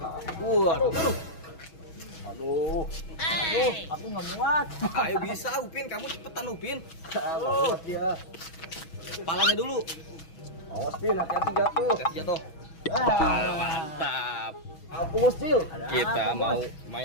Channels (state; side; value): late; right; 6.2 ms